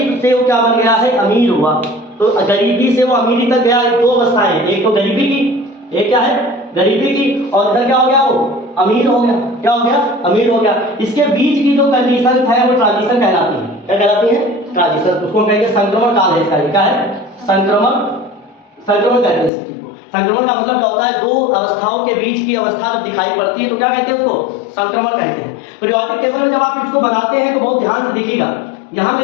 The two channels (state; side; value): drops out; right; at 19.5 s